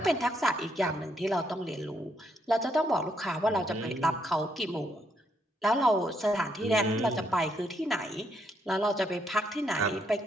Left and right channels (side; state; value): both; normal; correlation 0.75